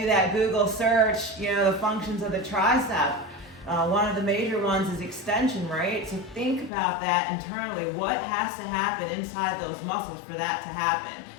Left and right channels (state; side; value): drops out; right; at 6.7 s